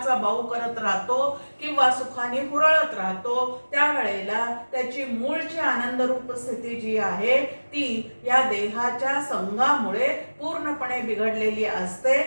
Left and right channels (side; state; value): both; inverted; correlation -1.00